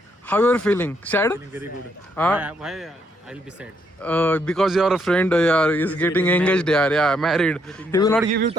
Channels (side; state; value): both; normal; correlation 0.74